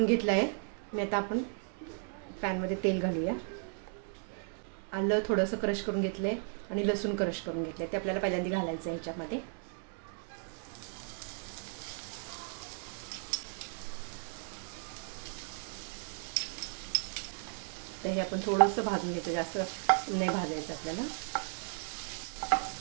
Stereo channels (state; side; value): silent; left; 54 dB below the other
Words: घेतला आहे मी. आता आपण पॅनमध्ये तेल घालूया. आलं थोडंसं क्रश करून घेतलं आहे आणि लसूण क्रश करून घेतलं आहे. ते आपल्याला पहिल्यांदा घालायचं आहे ह्याच्यामध्ये. तर हे आपण थोडंसं भाजून घ्यायचं, जास्त नाही भाजायचं आपल्याला.